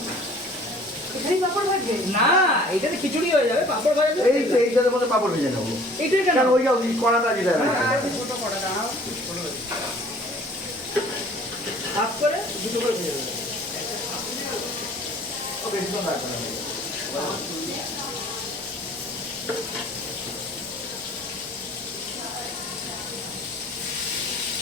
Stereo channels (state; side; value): normal; both; correlation 0.51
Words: এখানেই পাপড় ভাজবে না এইটাতে খিচুড়ি হয়ে যাবে পাপড় ভাজা যাবে এই এইটার মধ্যে পাপড় ভেজে নেবো এইটা কেন কারণ ওই যে কড়াটা যেটা ছোটো করা দাঁড়াও হাফ করে দুটো করে ভেজে দেবে বেশি তো লাগবে না